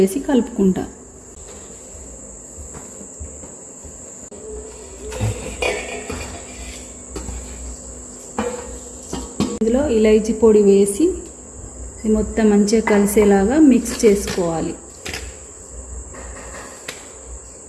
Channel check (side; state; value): both; identical; correlation 1.00